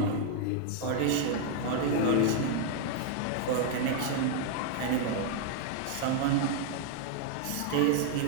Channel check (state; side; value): different; both; correlation 0.00